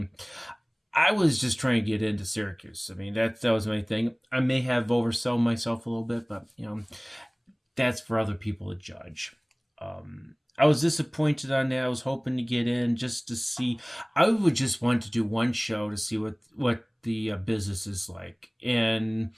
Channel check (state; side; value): identical; both; correlation 1.00